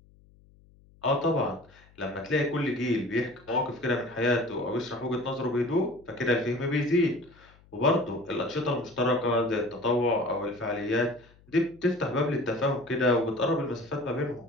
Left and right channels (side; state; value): left; noise; hum, 28 dB below the sound